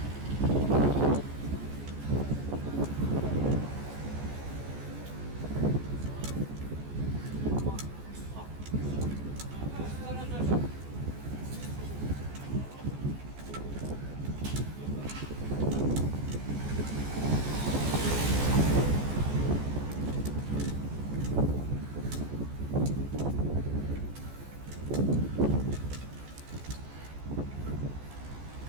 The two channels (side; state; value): left; late; 14 ms